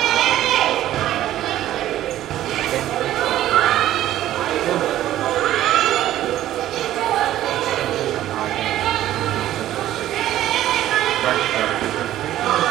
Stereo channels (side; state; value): left; quieter; 13.3 dB